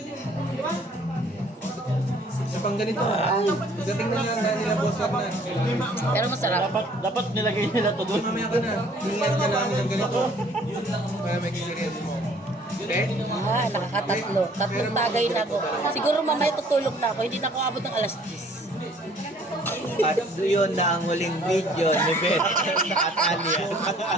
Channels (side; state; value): both; normal; correlation 0.57